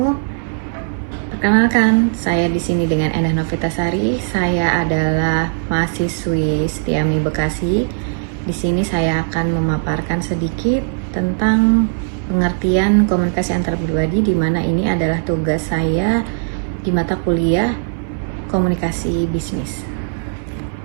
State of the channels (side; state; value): left; silent; 62 dB below the other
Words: Perkenalkan, saya di sini dengan Endah Novitasari. Saya adalah mahasiswi Setiami Bekasi. Di sini saya akan memaparkan sedikit tentang pengertian komunikasi antar pribadi, di mana ini adalah tugas saya di mata kuliah komunikasi bisnis.